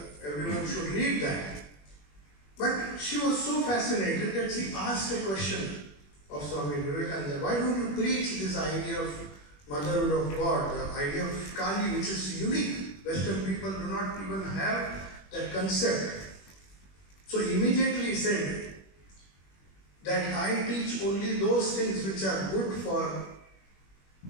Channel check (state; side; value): late; right; 21 ms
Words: Everyone should read that. But she was so fascinated that she asked a question of Swami Vivekananda. Why don't you preach this idea of motherhood of God, the idea of Kali, which is unique? Western people do not even have that concept. So immediately he said that I teach only those things which are good for,